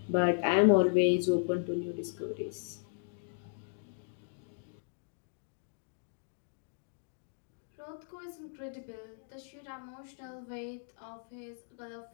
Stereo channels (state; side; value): silent; right; digital silence